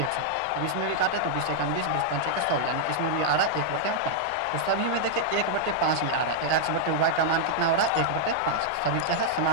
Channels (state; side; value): different; both; correlation -0.02